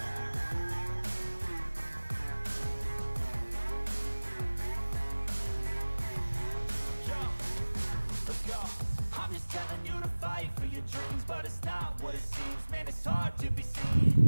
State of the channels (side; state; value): both; inverted; correlation -1.00